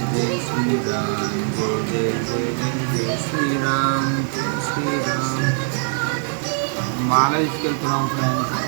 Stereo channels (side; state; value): left; silent; 56 dB below the other